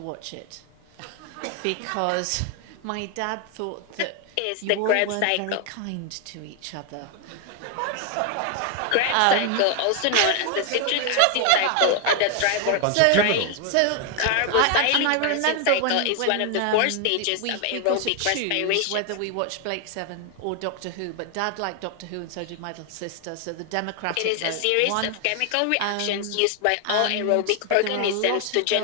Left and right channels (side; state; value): both; different; correlation 0.00